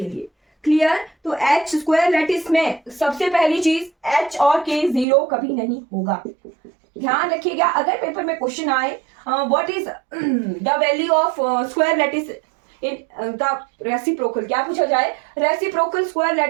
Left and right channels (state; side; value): drops out; left; at 5.1 s